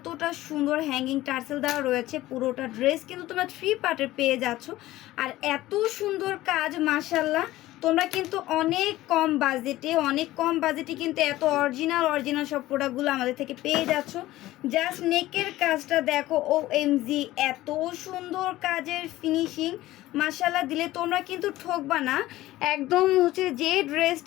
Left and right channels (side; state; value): right; quieter; 16.3 dB